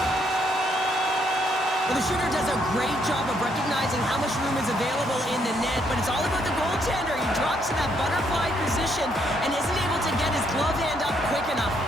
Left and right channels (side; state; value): both; normal; correlation 0.72